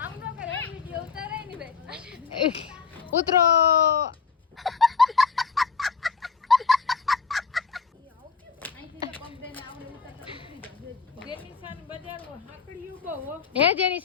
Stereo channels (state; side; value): quieter; right; 5.3 dB